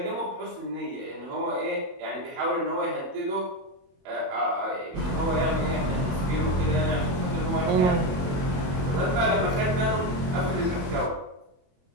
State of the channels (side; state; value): left; late; 21 ms